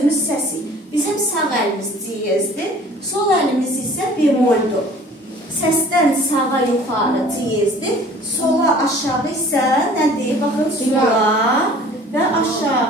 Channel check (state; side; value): normal; both; correlation 0.49